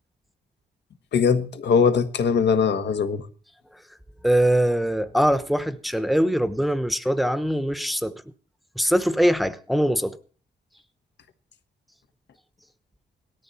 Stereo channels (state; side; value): normal; both; correlation 0.75